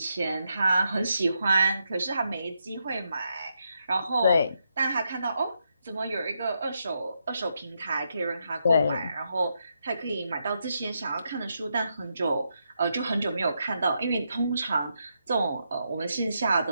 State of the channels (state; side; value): inverted; both; correlation -0.82